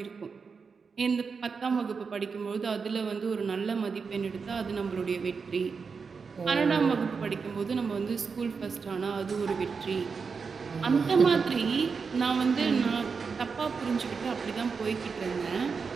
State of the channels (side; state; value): left; quieter; 5.3 dB